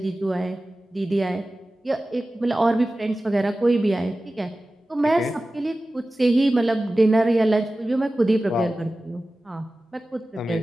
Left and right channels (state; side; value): normal; both; correlation 0.96